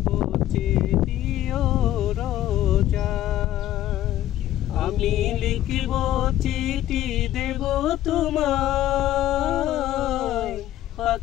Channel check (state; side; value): quieter; right; 13.2 dB